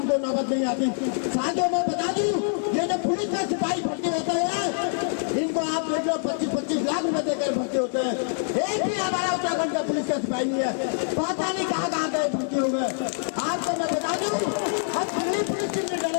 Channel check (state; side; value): silent; right; 61 dB below the other